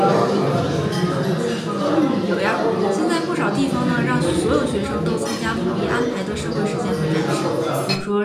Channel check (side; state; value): both; identical; correlation 1.00